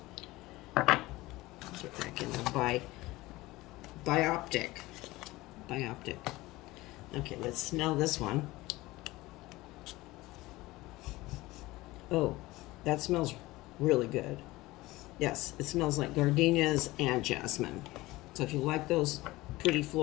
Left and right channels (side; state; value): right; quieter; 19.5 dB